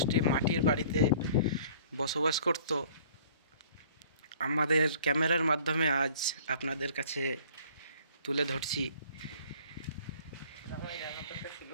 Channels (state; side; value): inverted; both; correlation -0.52